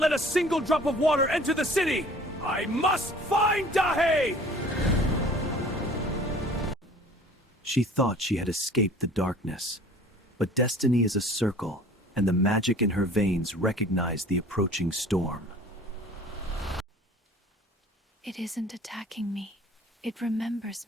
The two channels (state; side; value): normal; both; correlation 0.48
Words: a single drop of water enter the city! I must find Dahae! She thought she had escaped the darkness. But destiny is a circle, and the magic in her veins recognized the approaching storm. It isn't attacking me. It